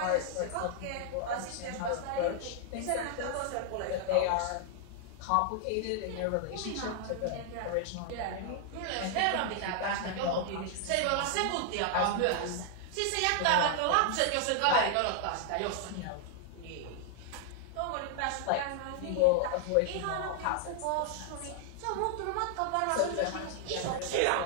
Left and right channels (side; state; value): both; different; correlation 0.00